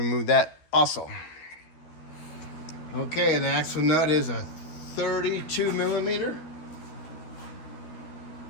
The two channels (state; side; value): late; right; 12 ms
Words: that also. Okay, the axle nut is a 32 millimeter.